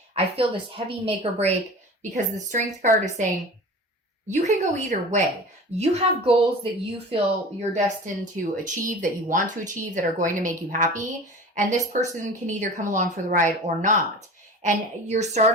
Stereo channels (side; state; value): both; normal; correlation 0.37